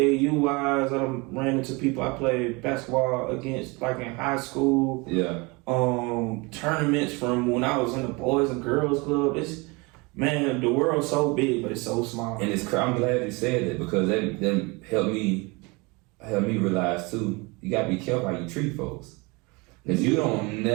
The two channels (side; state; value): left; quieter; 26.8 dB